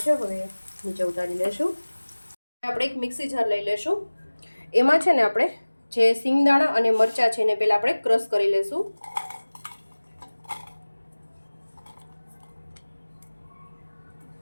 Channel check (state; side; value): inverted; both; correlation -1.00